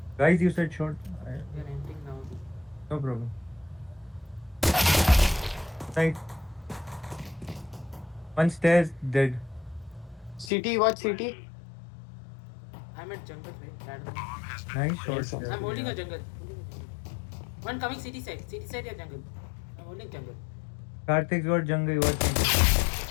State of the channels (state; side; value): drops out; right; at 10.5 s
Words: Guys, you said short. We are entering now. No problem. Right. One stairs dead. City, what city? I'm at jungle, right? That one. Nice shot. Yes, sir. I'm holding a jungle. One coming city side या jungle. I'm holding jungle. Karthik's got jungle. You got jungle.